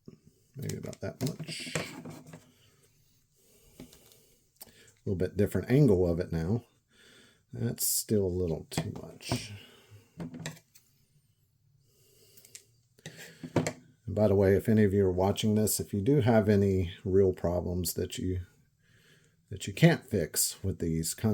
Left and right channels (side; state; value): both; identical; correlation 1.00